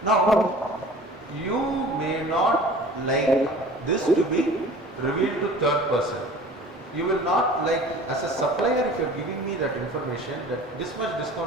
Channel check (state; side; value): normal; both; correlation 0.44